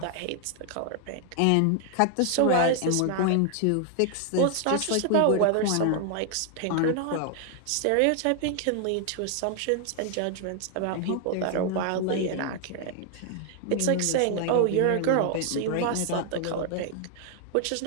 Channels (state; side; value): different; both; correlation 0.00